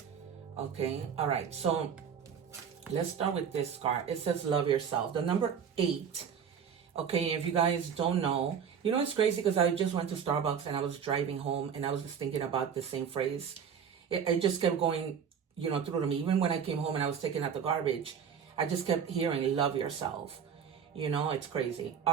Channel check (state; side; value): quieter; left; 7.4 dB